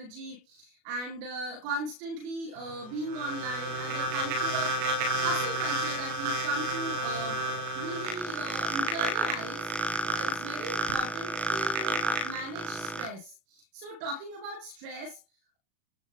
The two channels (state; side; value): late; left; 36 ms